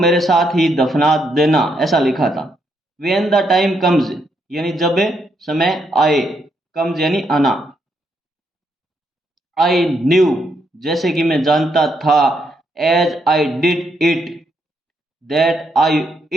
साथ ही दफना देना, ऐसा लिखा था। व्हेन द टाइम कम्स, यानी जब समय आए, कम्स यानी आना। आई न्यू, जैसे कि मैं जानता था, as I did it, that I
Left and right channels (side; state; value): both; normal; correlation 0.77